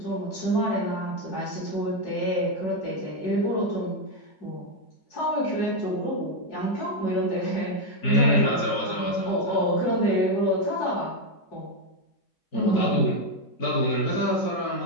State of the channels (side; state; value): right; late; 4.4 ms